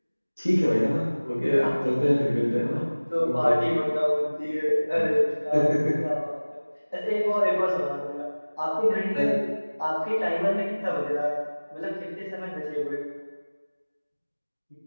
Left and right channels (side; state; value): both; inverted; correlation -1.00